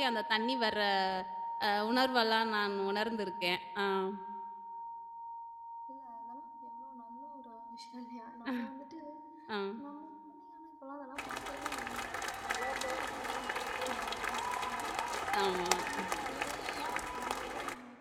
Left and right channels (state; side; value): identical; both; correlation 1.00